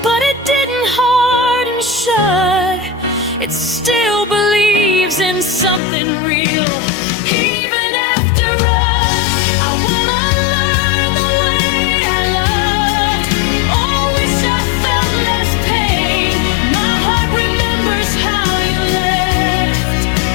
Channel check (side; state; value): right; drops out; at 5.8 s